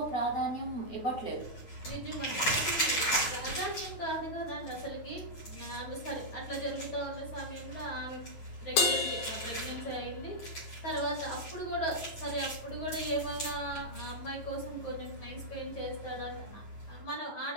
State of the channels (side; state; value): right; late; 9.3 ms